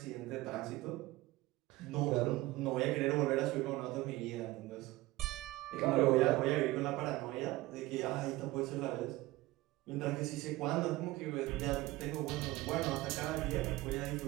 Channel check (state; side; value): quieter; left; 19.1 dB